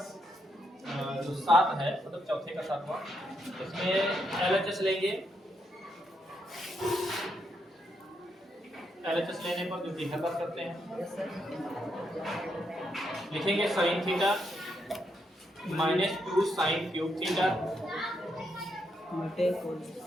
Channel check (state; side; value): normal; both; correlation 0.79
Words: जो 7 है, मतलब चौथे का 7वां, इसमें एलएचएस लेंगे। एलएचएस लेने पर जो कि हल करते हैं, लिखेंगे sine theta -2 sine cube theta